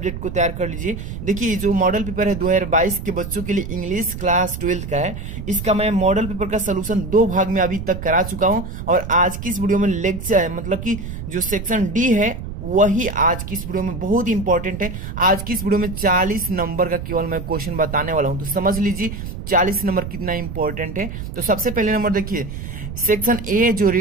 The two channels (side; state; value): right; noise; rumble, 8 dB below the sound